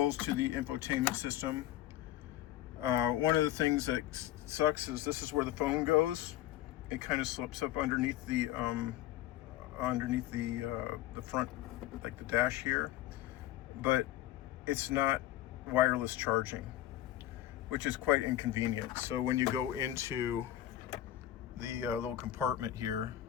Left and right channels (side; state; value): right; quieter; 13.6 dB